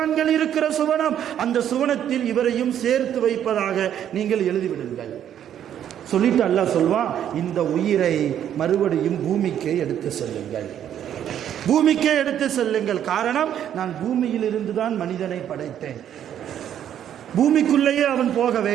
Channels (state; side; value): quieter; left; 10.1 dB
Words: இருக்கிற சுவனம், அந்த சுவனத்தில் இவரையும் சேர்த்து வைப்பதாக நீங்கள் எழுதிவிடுங்கள். சொல்லிட்டு அல்லாஹ் சொல்வான், இந்த உயிரை மறுபடியும் பூமிக்கே எடுத்து செல்லுங்கள், பூமிக்கே எடுத்து செல்லுங்கள். காரணம், நான் பூமியில் இருந்துதான் மனிதனை படைத்தேன், பூமிக்குள்ளேயே அவன் போக